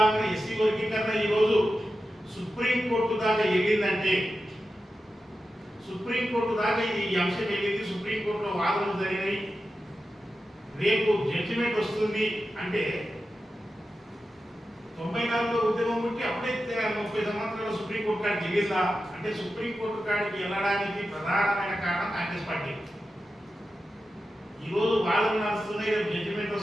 ఎస్సీ వర్గీకరణ ఈరోజు సుప్రీంకోర్టు దాకా వెళ్ళిందంటే, సుప్రీంకోర్టు దాకా ఈ అంశం వెళ్ళింది, సుప్రీంకోర్టులో వాదనలు జరిగినాయి, రేపు జడ్జిమెంట్ వస్తుంది అంటే 94లో ఉద్యమం ఉంటే అప్పుడే 30 సంవత్సరాల సుప్రీంకోర్టు కాడికి వెళ్ళిందా అంటే, సుప్రీంకోర్టు కాడికి వెళ్ళడానికి ప్రధానమైన కారణం కాంగ్రెస్ పార్టీ. ఈరోజు వాదనలు నడుస్తున్నాయి, రేపు జడ్జిమెంట్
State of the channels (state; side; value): normal; both; correlation 0.91